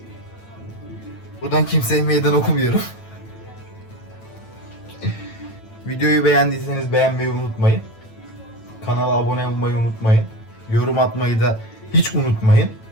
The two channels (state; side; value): late; right; 9.0 ms